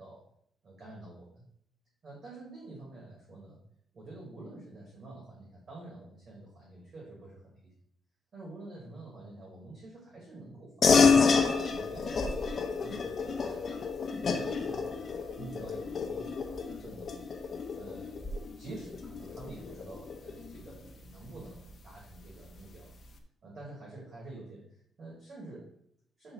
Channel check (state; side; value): quieter; right; 4.5 dB